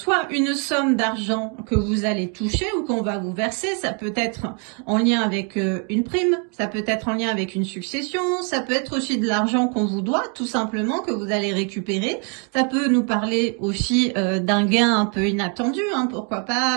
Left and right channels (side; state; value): left; quieter; 38.6 dB